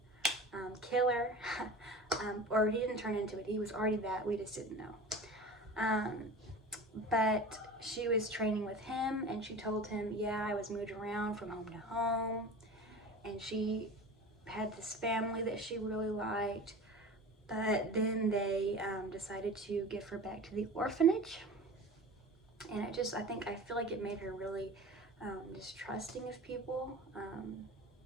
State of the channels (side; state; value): both; normal; correlation 0.36